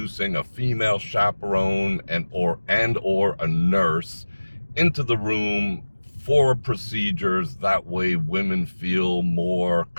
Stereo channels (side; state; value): both; inverted; correlation -1.00